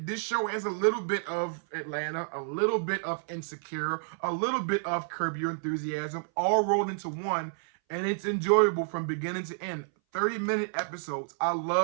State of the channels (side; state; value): left; silent; 58 dB below the other